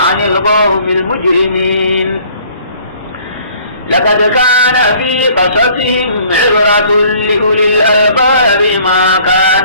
عن القوم المجرمين لقد كان في قصصهم عبرة لأولي الألباب ما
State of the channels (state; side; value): inverted; both; correlation -0.56